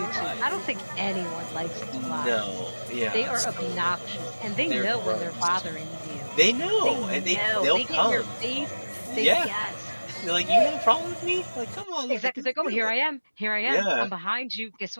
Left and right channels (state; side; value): inverted; both; correlation -1.00